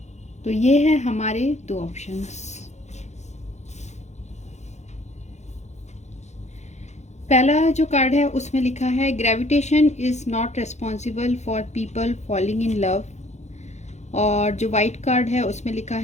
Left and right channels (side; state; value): right; late; 0.33 ms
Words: तो ये है हमारे दो ऑप्शंस। पहला जो कार्ड है उसमें लिखा है gravitation is not responsible for people falling in love. और जो वाइट कार्ड है उसमें लिखा